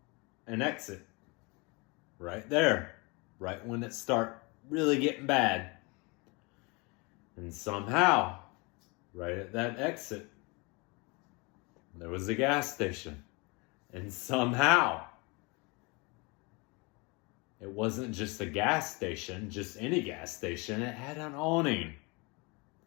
an exit right there, right when it started really getting bad. And somehow, right at that exit, there was a gas station. And somehow, it wasn't just a gas station, just any gas station. It had an awning.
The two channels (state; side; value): quieter; right; 28.4 dB